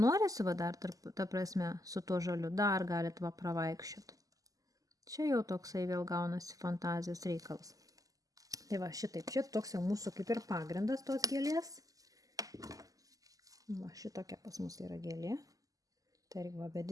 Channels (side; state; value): left; late; 0.17 ms